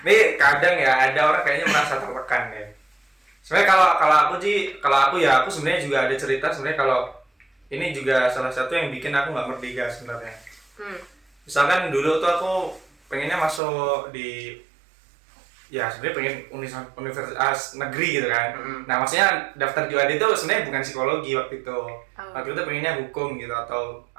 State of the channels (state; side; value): drops out; left; at 13.6 s